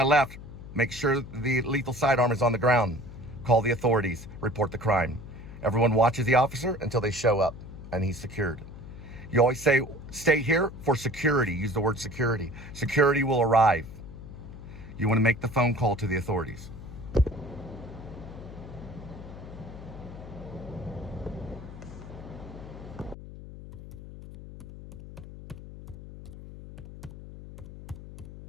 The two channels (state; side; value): noise; left; hum, 14 dB below the sound